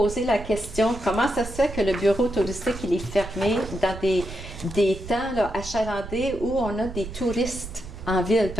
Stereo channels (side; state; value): right; noise; rumble, 12 dB below the sound